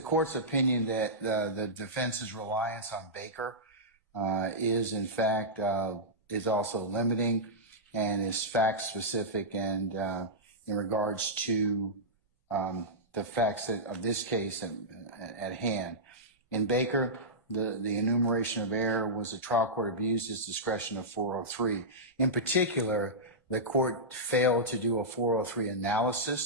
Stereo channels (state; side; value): normal; both; correlation -0.13